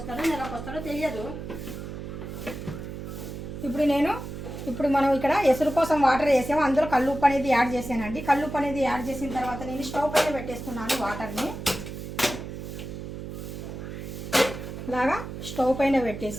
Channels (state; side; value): noise; right; hum, 8 dB below the sound